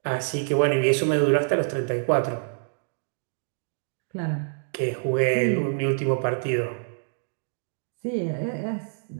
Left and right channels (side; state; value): left; silent; digital silence